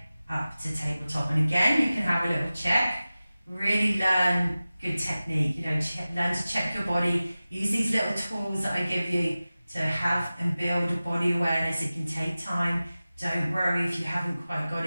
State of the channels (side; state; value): both; inverted; correlation -0.96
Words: up to tabletop. And again, you can have a little check. Really learn good technique. Learn to check your body. Use these little tools that I give you to have and build body awareness. It can take time. Don't worry if you haven't quite got